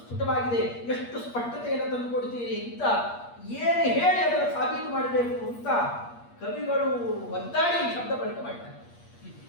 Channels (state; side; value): late; right; 8.5 ms